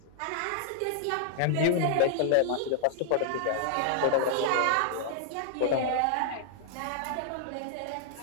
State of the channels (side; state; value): both; different; correlation -0.01